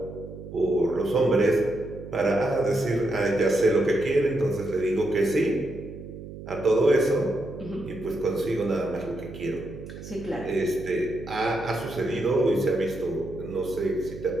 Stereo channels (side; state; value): right; noise; hum, 12 dB below the sound